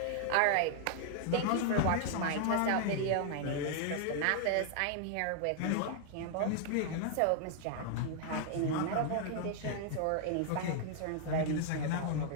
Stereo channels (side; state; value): both; different; correlation 0.00